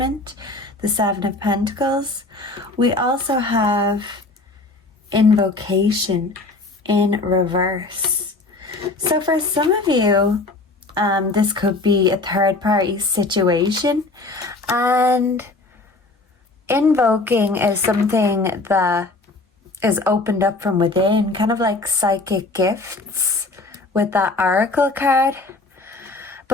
The 7 of Pentacles. We also have invocation in reverse. So for some of you, this could be a third party situation, and invoking is something that is opened up from within, kind of like psychic gifts with that Oracle card.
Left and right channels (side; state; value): right; quieter; 3.2 dB